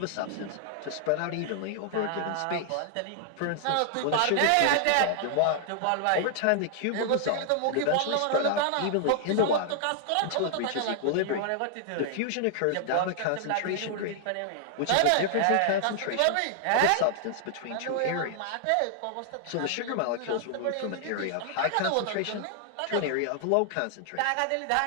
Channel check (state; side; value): different; both; correlation 0.00